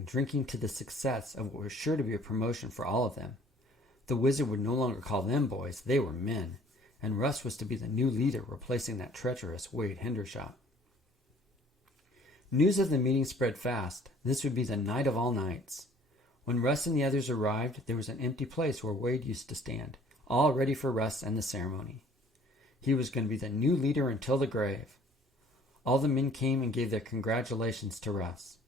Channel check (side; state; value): both; normal; correlation 0.55